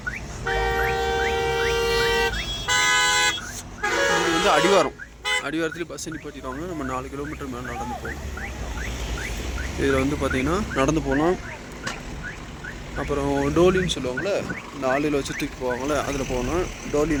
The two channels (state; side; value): identical; both; correlation 1.00